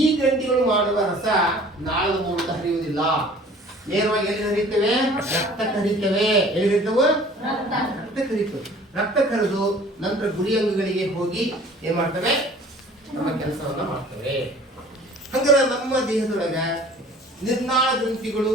ಗ್ರಂಥಿಗಳು ಮಾಡುವ ರಸ ನಾಳದ ಮೂಲಕ ಹರಿಯುವುದಿಲ್ಲ. ನೇರವಾಗಿ ಎಲ್ಲಿ ಹರಿಯುತ್ತವೆ? ರಕ್ತಕ್ಕೆ ಹರಿಯುತ್ತವೆ. ಎಲ್ಲಿ ಹರಿಯುತ್ತವೆ? ರಕ್ತಕ್ಕೆ ಹರಿಯುತ್ತವೆ. ರಕ್ತ ಕರೆದು ನಂತರ ಗುರಿ ಅಂಗಗಳಿಗೆ ಹೋಗಿ ಏನ್ ಮಾಡ್ತವೆ? ನಮ್ಮ ಕೆಲಸವನ್ನ ಮಾಡ್ತವೆ. ಹಂಗಾರೆ ನಮ್ಮ ದೇಹದೊಳಗ ನಿರ್ನಾಳ ಗ್ರಂಥಿಗಳು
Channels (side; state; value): both; normal; correlation 0.49